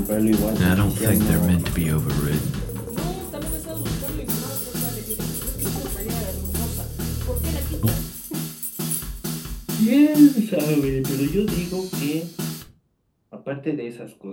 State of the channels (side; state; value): both; identical; correlation 1.00